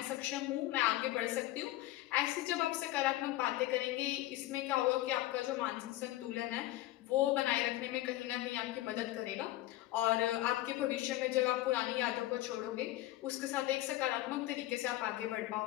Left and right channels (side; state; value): right; quieter; 15.9 dB